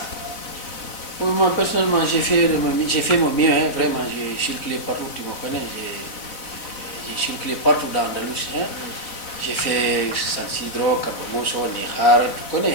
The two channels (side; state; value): right; late; 3.9 ms